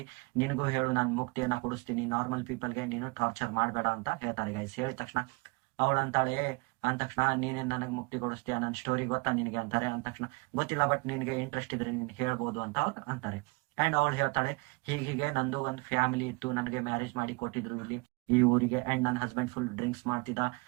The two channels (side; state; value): left; quieter; 28.0 dB